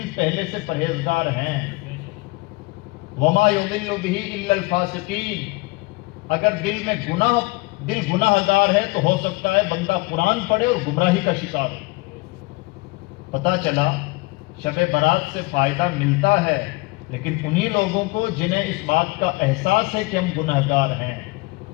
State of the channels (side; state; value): right; quieter; 24.3 dB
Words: پہلے سے پرہیزگار ہیں۔ وما یضل بہ الا الفاسقین۔ اگر دل گناہ گار ہے تو ہو سکتا ہے بندہ قرآن پڑھے اور گمراہی کا شکار ہو۔ پتہ چلا شب برات سے فائدہ ملتا ہے، لیکن انہی لوگوں کو جنہیں اس بات کا احساس ہے کہ ہم گناہ گار ہیں۔